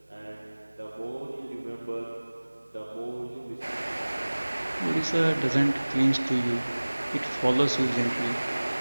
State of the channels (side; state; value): both; inverted; correlation -1.00